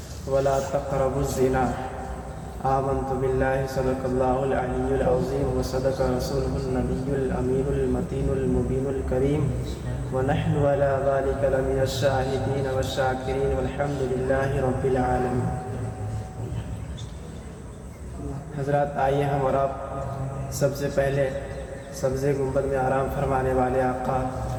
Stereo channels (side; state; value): both; identical; correlation 1.00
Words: ولا تقربوا الزنا، آمنت باللہ صدق اللہ العلی العظیم وصدق رسولہ النبی الامین المتین المبین الکریم، ونحن علی ذلک لمن الشاہدین والشاکرین والحمد للہ رب العالمین۔ حضرات، آئیے ہم اور آپ سب سے پہلے سبز گنبد میں آرام فرمانے والے آقا